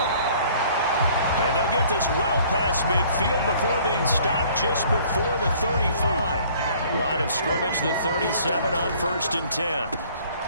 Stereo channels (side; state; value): both; inverted; correlation -0.55